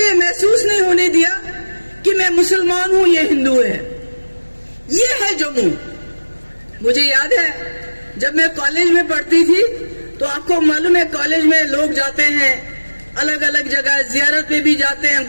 महसूस नहीं होने दिया कि मैं मुसलमान हूं, ये हिंदू है। ये है जम्मू। मुझे याद है जब मैं कॉलेज में पढ़ती थी तो आपको मालूम है कॉलेज में लोग जाते हैं अलग अलग जगह, जियारत में भी जाते हैं,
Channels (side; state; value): both; inverted; correlation -1.00